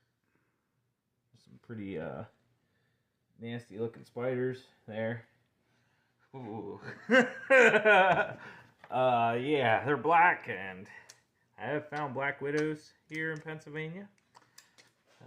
Some pretty nasty looking spiders there. Ooh. Yeah, they're black, and I have found black widows here in Pennsylvania.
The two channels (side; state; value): both; identical; correlation 1.00